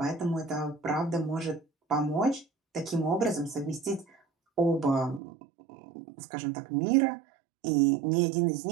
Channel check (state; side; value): drops out; left; at 5.2 s